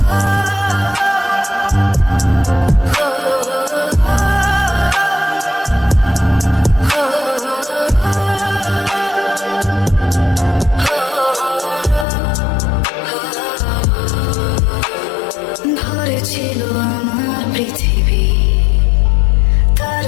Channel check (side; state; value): right; drops out; at 12.1 s